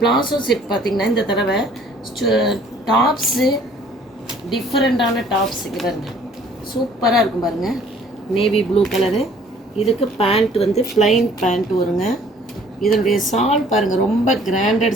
செட் பார்த்திங்கன்னா இந்த தடவை டாப்ஸு டிஃப்ரெண்ட்டான டாப்ஸ் இங்கே பாருங்கள், சூப்பராக இருக்கும் பாருங்கள். நேவி ப்ளூ கலரு, இதுக்கு பேண்ட் வந்து ப்ளைன் பேண்ட் வருங்க. இதனுடைய சால் பாருங்கள், ரொம்ப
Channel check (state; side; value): normal; both; correlation 0.56